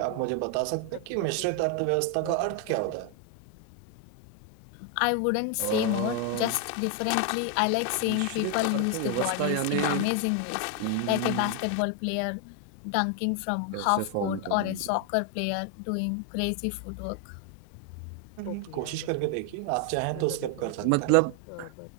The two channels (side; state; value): both; different; correlation 0.01